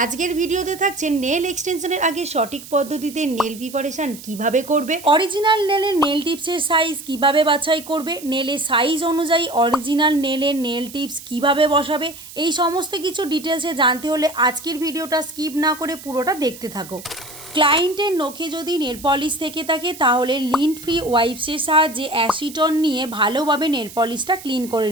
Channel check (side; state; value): right; noise; hiss, 16 dB below the sound